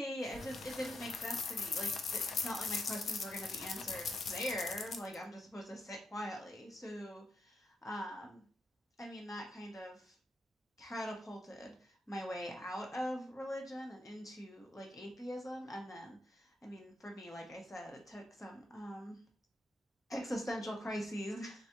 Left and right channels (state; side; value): normal; both; correlation 0.82